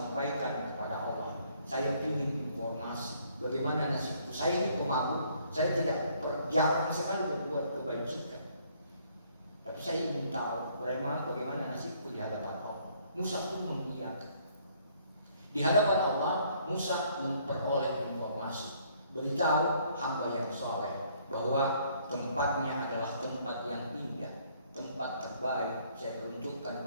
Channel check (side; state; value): both; inverted; correlation -0.64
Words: kepada Allah, saya ingin informasi bagaimana nasibku. Saya ini pemabuk, saya tidak jarang sekali berbuat kebajikan, tapi saya ingin tahu bagaimana nasibku di hadapan Allah. Musa pun mengiyakan. Di hadapan Allah, Musa memperoleh informasi, beritahu hamba yang soleh bahwa tempatnya adalah tempat yang indah, tempat terbaik saya